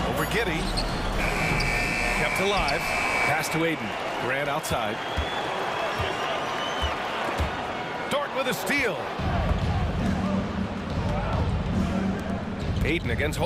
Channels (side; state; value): both; identical; correlation 1.00